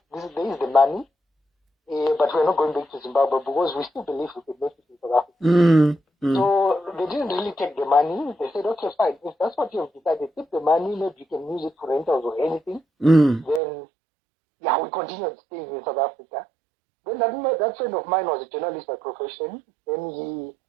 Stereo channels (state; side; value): drops out; left; at 13.6 s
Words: is the money, but we're not going back to Zimbabwe because we still believe we can make it in South Africa. So they didn't really take the money. They said, okay, fine. If that's what you've decided, take the money, maybe you can use it for rentals or anything. Then, yeah, we continued staying in South Africa. Then that friend of mine was a journalist by profession. Then